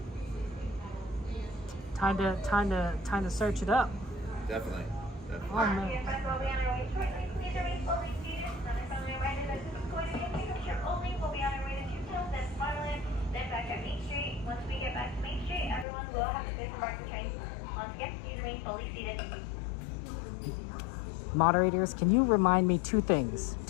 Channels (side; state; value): right; drops out; at 15.9 s